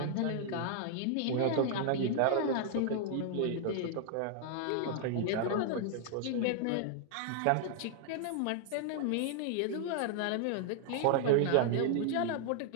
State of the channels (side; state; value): both; different; correlation 0.00